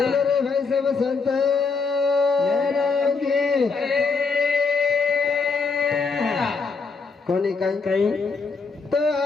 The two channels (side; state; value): right; quieter; 4.6 dB